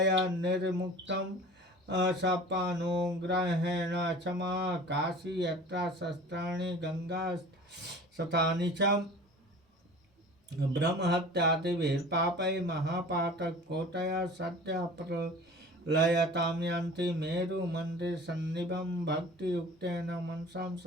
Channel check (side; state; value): both; normal; correlation 0.41